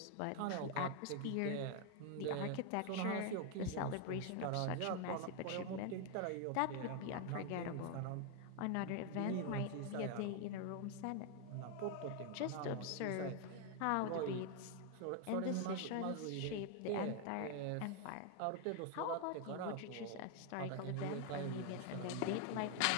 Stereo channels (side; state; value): both; different; correlation 0.00